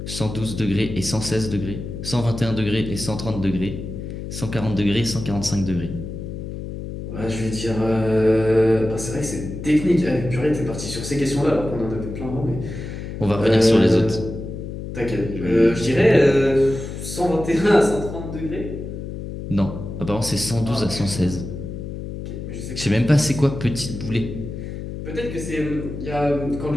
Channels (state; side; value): noise; left; hum, 8 dB below the sound